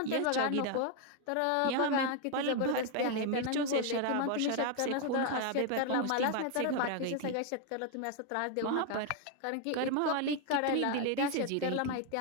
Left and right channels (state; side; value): different; both; correlation 0.01